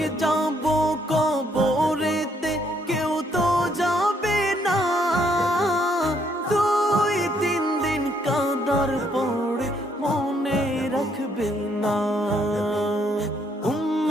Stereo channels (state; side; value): normal; both; correlation 0.70